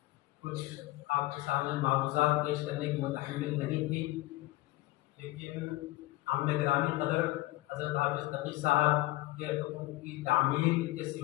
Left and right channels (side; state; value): right; quieter; 18.8 dB